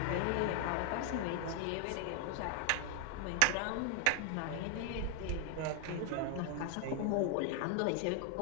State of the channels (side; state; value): both; different; correlation 0.00